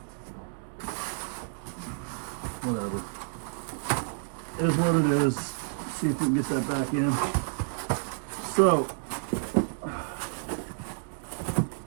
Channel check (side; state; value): left; silent; 58 dB below the other